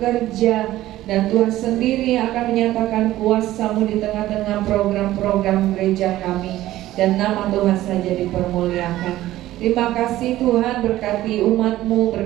dan Tuhan sendiri akan menyatakan kuasa-Mu di tengah-tengah program-program gereja kami, dan nama Tuhan saja dipermuliakan. Terima kasih Tuhan, berkati umat-Mu,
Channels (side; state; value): left; quieter; 15.0 dB